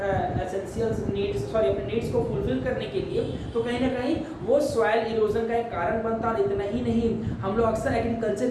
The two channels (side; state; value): both; identical; correlation 1.00